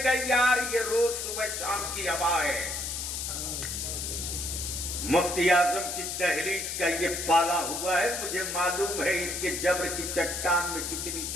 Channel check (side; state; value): left; noise; hiss, 4 dB below the sound